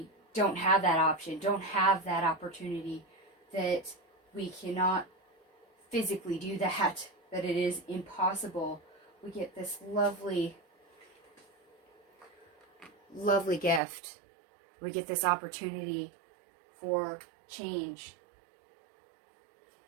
don't have that option, don't have that opportunity, that we cannot physically do that it is impossible, we get this lovely, lovely gift. We get this opportunity for change.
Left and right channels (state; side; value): drops out; left; at 13.8 s